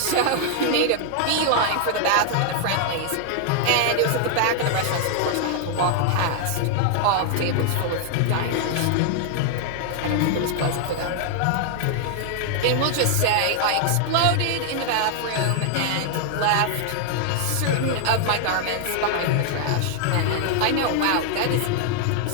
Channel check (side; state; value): both; different; correlation 0.00